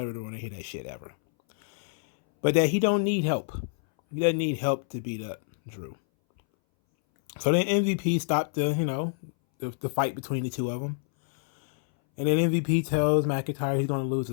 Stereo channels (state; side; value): silent; right; 60 dB below the other